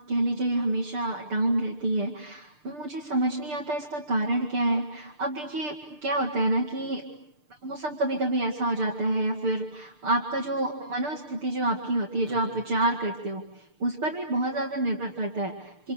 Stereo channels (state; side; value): late; left; 6.7 ms